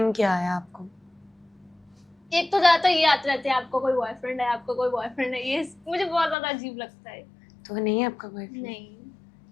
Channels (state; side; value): drops out; right; at 6.4 s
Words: क्या आया आपको? एक तो ज्यादातर ये आते रहते हैं, आपको कोई बॉयफ्रेंड है, आपको कोई बॉयफ्रेंड है, ये मुझे बहुत ज्यादा अजीब लगता है। तो नहीं है आपका बॉयफ्रेंड? नहीं,